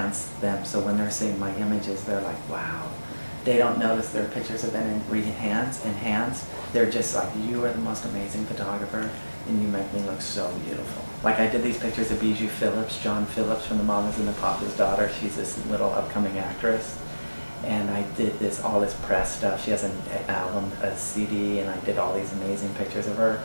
them, so when they're seeing my images, they're like, wow. They don't notice their pictures have been enhanced. They're just like, you are the most amazing photographer, and you make me look so beautiful. Like I did these pictures of Bijou Phillips, John Phillips from The Mamas and the Papas daughter. She's this little upcoming actress. And I did all this press stuff. She has an album, a CD, and I did all these amazing pictures of her.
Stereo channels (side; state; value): both; inverted; correlation -1.00